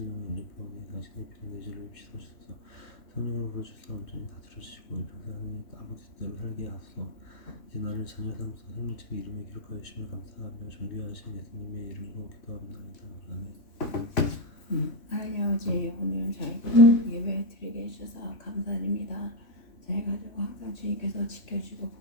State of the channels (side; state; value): right; late; 3.1 ms